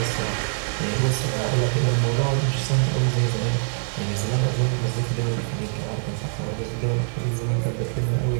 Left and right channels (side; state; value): left; silent; digital silence